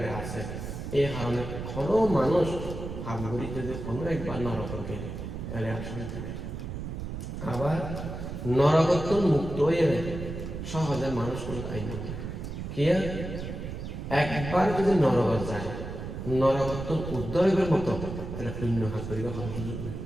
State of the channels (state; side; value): noise; right; rumble, 7 dB below the sound